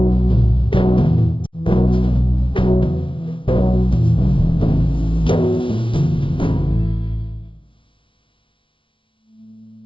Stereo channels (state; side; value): late; right; 0.25 ms